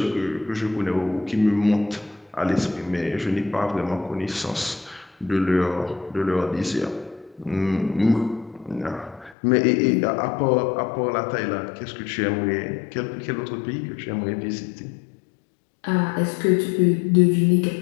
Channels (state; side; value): drops out; right; at 9.3 s